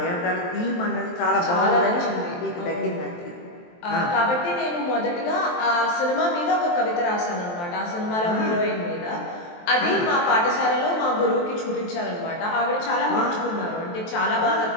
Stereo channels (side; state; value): right; late; 23 ms